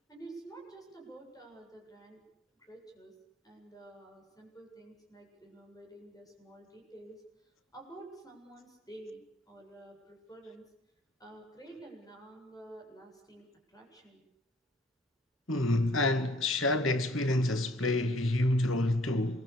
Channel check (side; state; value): both; normal; correlation 0.60